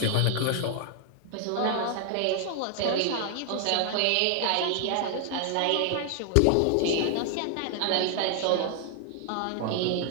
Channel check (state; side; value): different; both; correlation 0.00